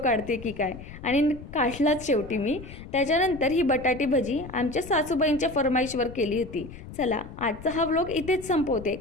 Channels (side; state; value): left; noise; rumble, 14 dB below the sound